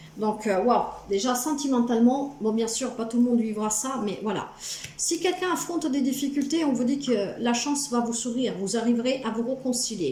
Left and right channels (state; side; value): identical; both; correlation 1.00